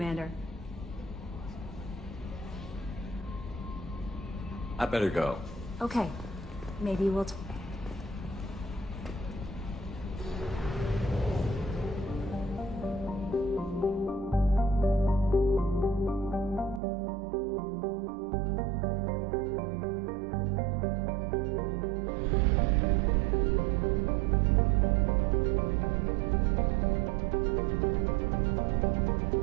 I better go. Okay. Maybe we'll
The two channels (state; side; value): drops out; left; at 16.8 s